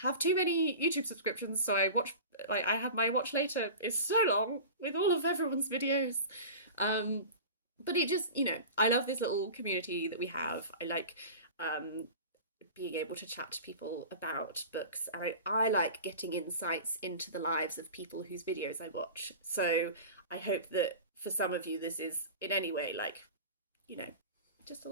too many YouTube subscriptions, so I watch, like, I have my watch later. It's so long with all of everyone's videos. But it just, you know, I love this little community that we have. I like being able to chat to people about books. And I like getting insights into the lives of people whose videos I watch. So I hope that for some of you, this is in any way like, you know, just a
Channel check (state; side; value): inverted; both; correlation -0.33